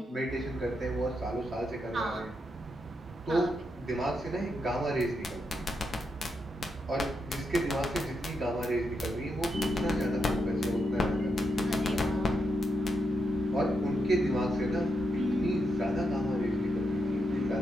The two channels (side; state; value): both; normal; correlation 0.83